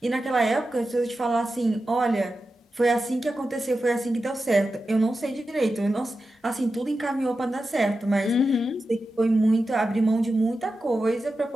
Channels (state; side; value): normal; both; correlation 0.91